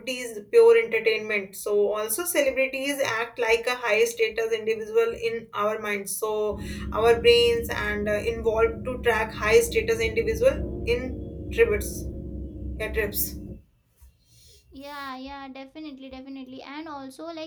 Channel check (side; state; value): both; identical; correlation 1.00